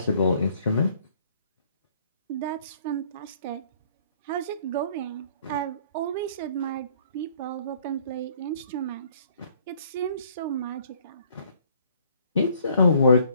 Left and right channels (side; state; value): both; inverted; correlation -0.60